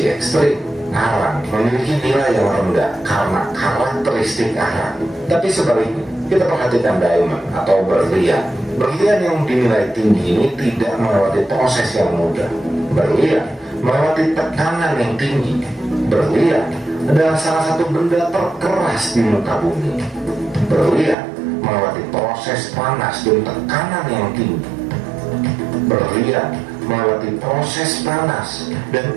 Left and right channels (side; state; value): left; drops out; at 21.2 s